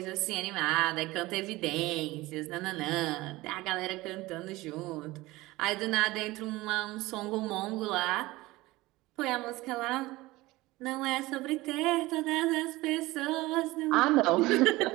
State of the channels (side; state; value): left; quieter; 19.7 dB